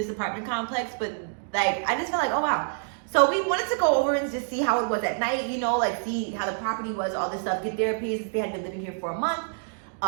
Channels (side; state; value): left; silent; digital silence